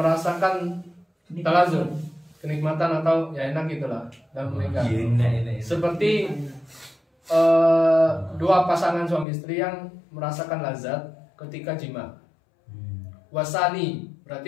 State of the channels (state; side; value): drops out; right; at 9.2 s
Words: talazum, kenikmatan atau ya enak gitulah dalam menikah. Seperti dua pasangan suami istri yang merasakan lazat ketika jima. Wasani,